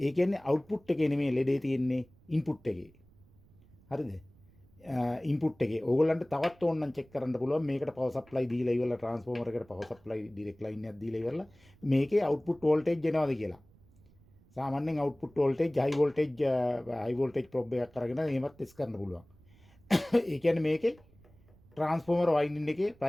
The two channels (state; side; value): noise; right; rumble, 28 dB below the sound